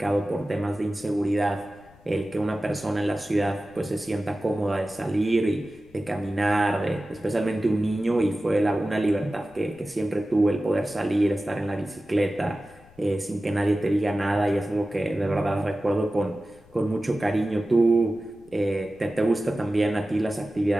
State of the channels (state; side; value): noise; left; rumble, 26 dB below the sound